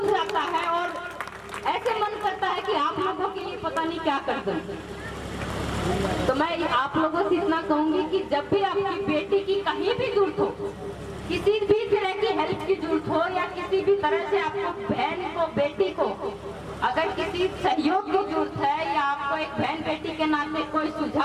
जाता है और ऐसे मन करता है कि आप लोगों के लिए पता नहीं क्या कर दूं। तो मैं आप लोगों से इतना कहूंगी कि जब भी आपकी बेटी की कहीं भी जरूरत हो, किसी भी तरह की हेल्प की जरूरत हो या किसी भी तरह से आपको बहन को, बेटी को अगर किसी सहयोग की जरूरत है या आपको एक बहन बेटी के नाते कोई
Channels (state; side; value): identical; both; correlation 1.00